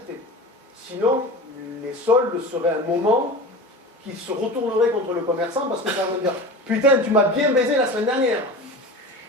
Sinon, les soldes seraient un moment qui se retournerait contre le commerçant parce que ça veut dire « Putain, tu m'as bien baisé la semaine dernière !»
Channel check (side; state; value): both; normal; correlation 0.32